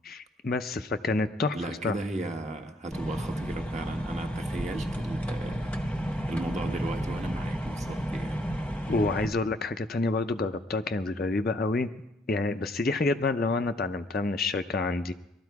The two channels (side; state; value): both; normal; correlation 0.66